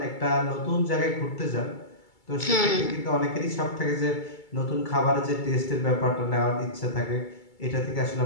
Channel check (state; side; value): late; right; 2.3 ms